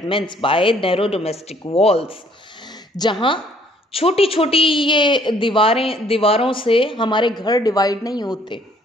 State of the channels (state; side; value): normal; both; correlation 0.62